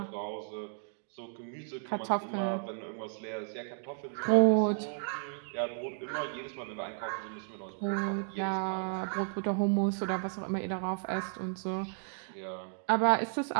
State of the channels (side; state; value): left; silent; 56 dB below the other